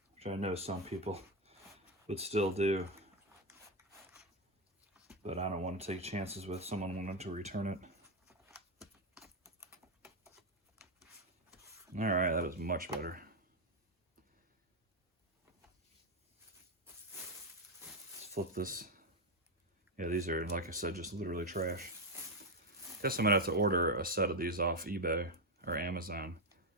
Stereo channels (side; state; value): both; normal; correlation 0.06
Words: Which I know some people would still do, but I don't want to take chances with someone wanting to return it. All right, that is much better. Let's flip this. Yeah, these are, like I said, just literally trash. Guess I'm gonna have to order a set of these off eBay or Amazon